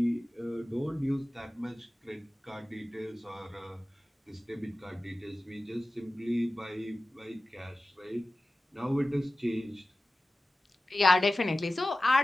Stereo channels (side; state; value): both; normal; correlation 0.96